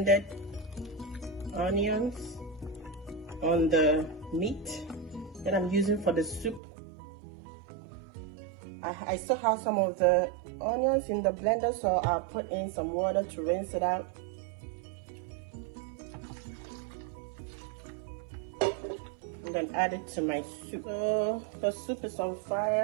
onions on the meat that I'm using for the soup. I still have some of the onions in the blender, so I'll put in some water to rinse it out. And then add it to my soup. So the soup is on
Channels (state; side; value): drops out; left; at 6.6 s